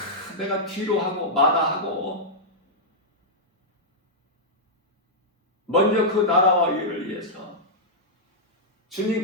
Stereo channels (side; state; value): both; normal; correlation -0.09